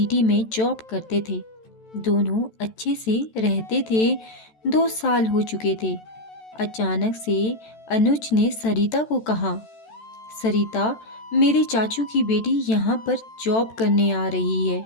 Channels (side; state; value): right; late; 14 ms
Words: में जॉब करते थे। दोनों अच्छे से रहते थे। 2 साल हो चुके थे। अचानक से अनुज ने सरिता को कहा, सरिता, मेरे चाचू की बेटी यहाँ पर जॉब करने आ रही है।